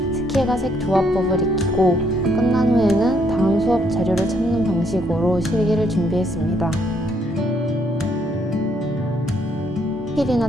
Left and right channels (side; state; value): both; normal; correlation 0.71